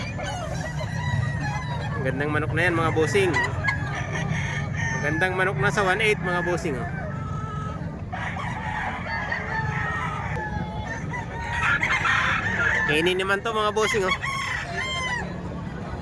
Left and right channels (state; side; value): identical; both; correlation 1.00